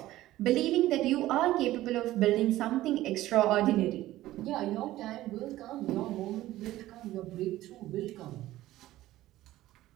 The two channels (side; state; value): left; quieter; 15.5 dB